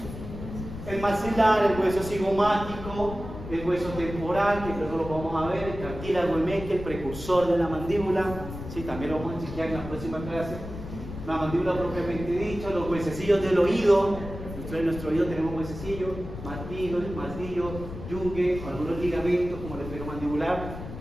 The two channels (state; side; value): noise; left; rumble, 10 dB below the sound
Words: El maxilar, el hueso cigomático, el hueso temporal, que luego lo vamos a ver, el cartílago emeque, el precursor de la mandíbula, sí, también lo vamos a enseñar en la próxima clase. La mandíbula propiamente dicha, los huesecillos del oído, en nuestro oído tenemos huesecillos, martillo, yunque, algunos ligamentos como el esferomandibular,